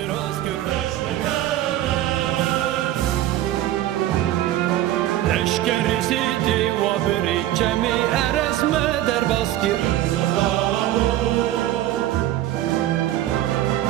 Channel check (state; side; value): quieter; left; 13.8 dB